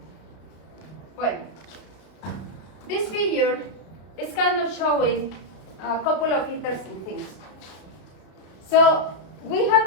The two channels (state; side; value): late; right; 32 ms